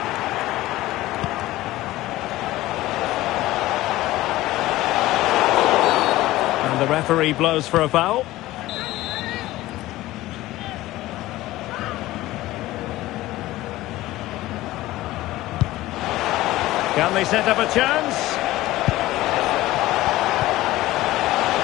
And the referee blows for a foul. Can they set up a chance?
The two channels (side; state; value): right; quieter; 16.9 dB